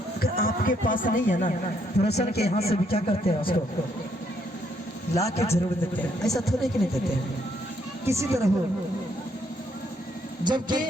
आपके पास नहीं है ना, रोशन के यहाँ से भी क्या करते हैं, उसको ला के जरूर देते हैं, ऐसा थोड़े कि नहीं देते हैं, किसी तरह हो। जबकि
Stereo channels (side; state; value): both; normal; correlation 0.72